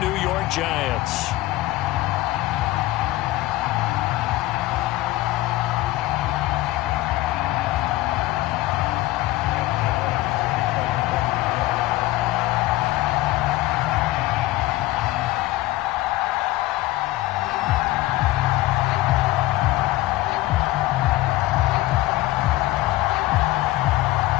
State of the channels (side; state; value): right; quieter; 17.6 dB